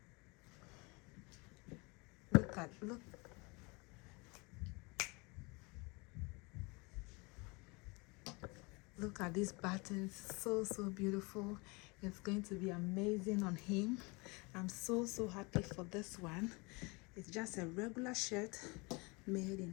Look at these buttons. So beautiful. It's going to be amazing on him. I'm so happy for this one. It's just a regular shirt made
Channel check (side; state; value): right; quieter; 27.8 dB